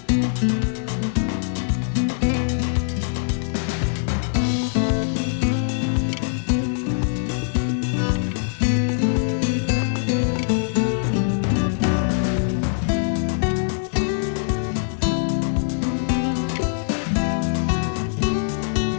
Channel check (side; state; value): right; silent; digital silence